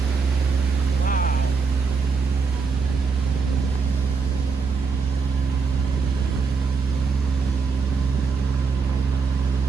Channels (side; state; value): left; quieter; 4.9 dB